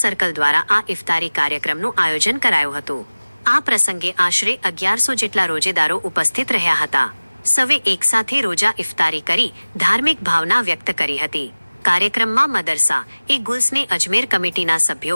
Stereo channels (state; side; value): inverted; both; correlation -0.99